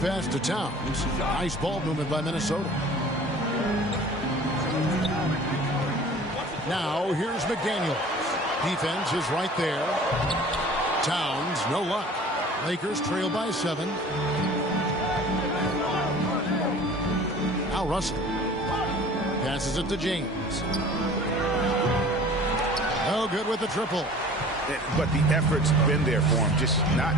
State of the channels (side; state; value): both; normal; correlation 0.45